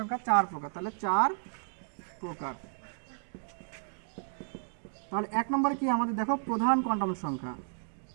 4 প্রকার। তাহলে 4 প্রকার। তাহলে এক নম্বরে কি আমাদের দেখো, প্রধান কোয়ান্টাম সংখ্যা।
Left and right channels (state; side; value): silent; left; digital silence